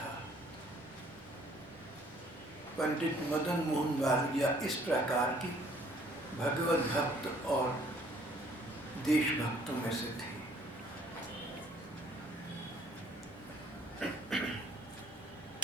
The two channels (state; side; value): normal; both; correlation 0.60